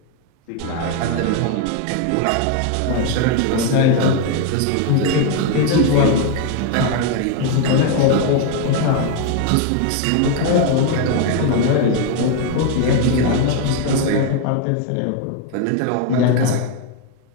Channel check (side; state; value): both; different; correlation 0.01